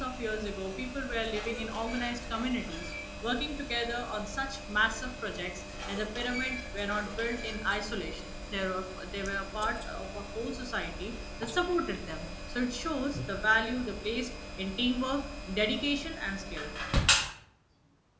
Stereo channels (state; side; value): identical; both; correlation 1.00